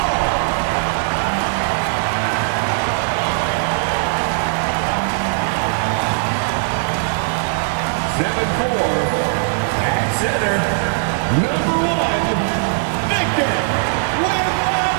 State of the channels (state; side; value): silent; left; digital silence